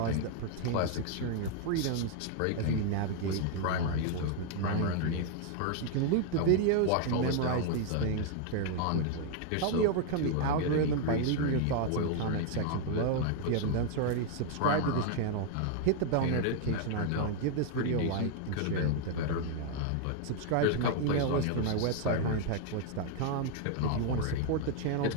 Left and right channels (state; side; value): different; both; correlation 0.00